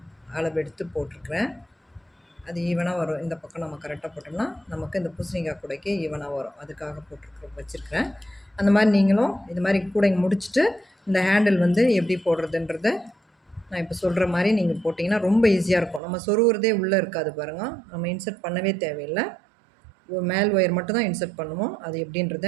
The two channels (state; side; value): drops out; left; at 16.0 s